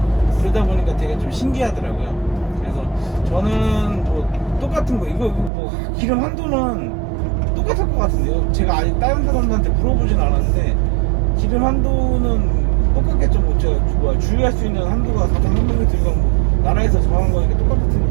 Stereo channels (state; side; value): drops out; left; at 5.5 s